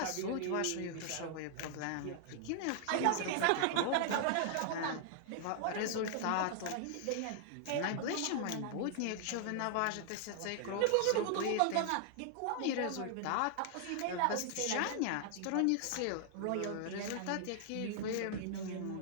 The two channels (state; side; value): different; both; correlation 0.00